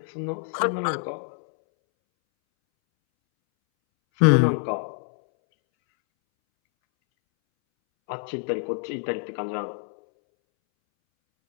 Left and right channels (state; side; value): silent; right; 61 dB below the other